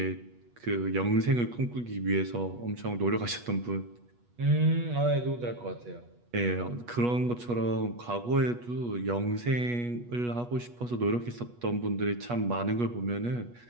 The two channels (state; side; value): late; left; 8.3 ms